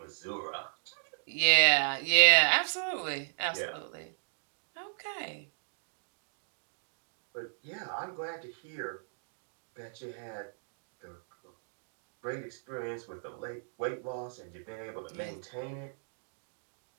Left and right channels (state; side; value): silent; left; digital silence